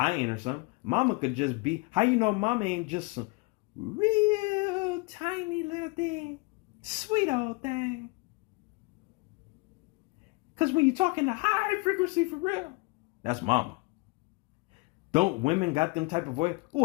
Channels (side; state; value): right; quieter; 26.9 dB